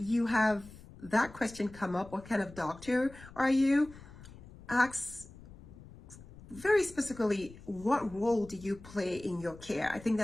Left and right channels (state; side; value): noise; left; rumble, 19 dB below the sound